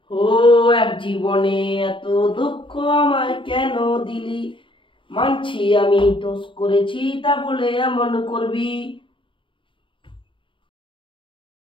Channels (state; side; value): late; right; 0.25 ms